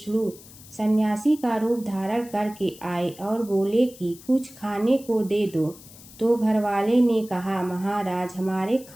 सन्यासी का रूप धारण करके आए और बोले कि कुछ खाने को दे दो। तो घर वाले ने कहा, महाराज हमारे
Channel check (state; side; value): noise; left; hiss, 20 dB below the sound